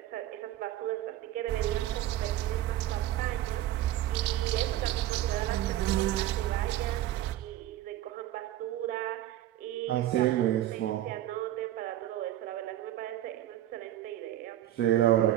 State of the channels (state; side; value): quieter; left; 13.4 dB